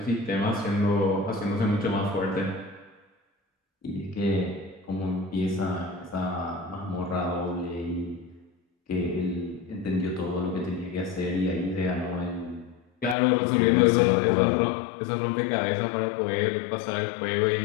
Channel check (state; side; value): drops out; right; at 13.2 s